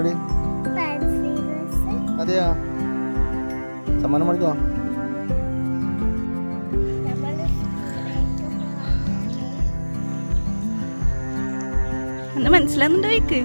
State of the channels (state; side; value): inverted; both; correlation -1.00